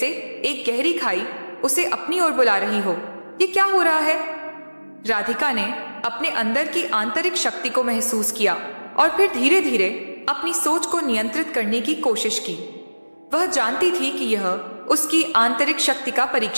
एक गहरी खाई उसे अपनी ओर बुला रही हो। ये क्या हो रहा है? राधिका ने अपने अंदर की आंतरिक शक्ति को महसूस किया और फिर धीरे धीरे अपनी सोच को नियंत्रित करने की कोशिश की। वह जानती थी कि यह उसकी आंतरिक शक्ति का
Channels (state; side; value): inverted; both; correlation -1.00